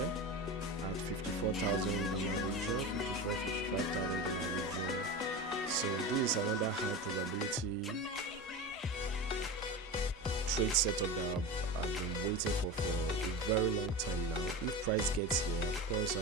at $54,000 region, $55,000 region. So this is another high probability trade setup that I've been waiting for a very long time now. If price gets here, of course I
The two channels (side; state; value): both; normal; correlation 0.26